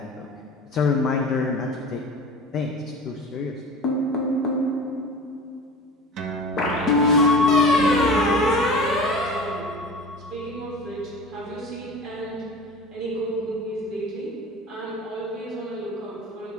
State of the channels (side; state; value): both; normal; correlation 0.37